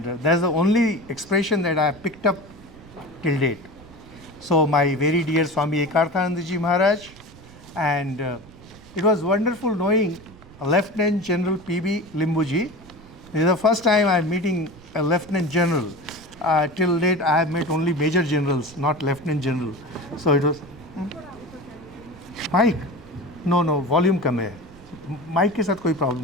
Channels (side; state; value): right; noise; rumble, 21 dB below the sound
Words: that's the only expression that I have picked up till date. So my very dear Swami Ekarthanandaji Maharaj, and it was wonderful knowing Lieutenant General P.B. Limbuji. This is the first time I am meeting a Lieutenant General. Till date I have met only Major Generals, not Lieutenant General. So it was... Mic? No, volume कम है. Mic के साथ कोई